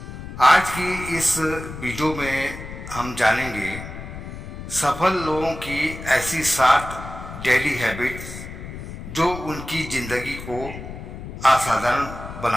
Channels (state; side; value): noise; left; rumble, 10 dB below the sound